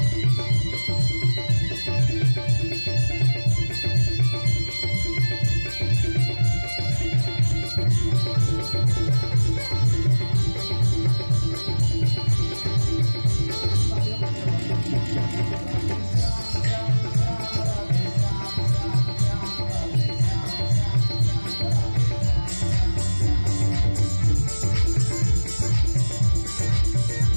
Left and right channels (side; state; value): both; inverted; correlation -1.00